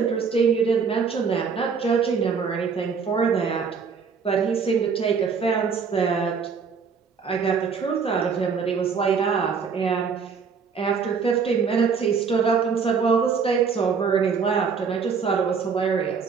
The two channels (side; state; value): left; quieter; 5.8 dB